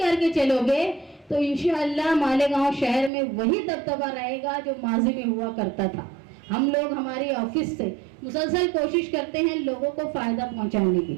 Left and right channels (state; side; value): drops out; left; at 3.1 s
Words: चलोगे तो इंशाअल्लाह मालेगांव शहर में वही दबदबा रहेगा जो माजी में हुआ करता था। हम लोग हमारी ऑफिस से मुसलसल कोशिश करते हैं लोगों को फायदा पहुंचाने की।